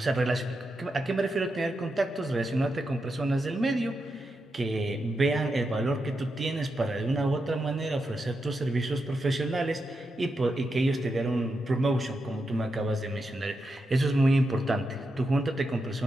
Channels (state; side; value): normal; both; correlation 0.86